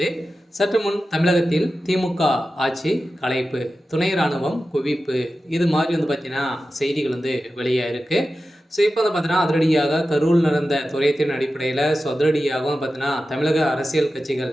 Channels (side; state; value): both; normal; correlation 0.93